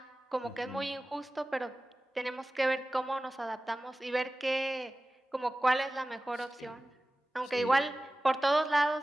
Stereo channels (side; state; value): both; normal; correlation 0.97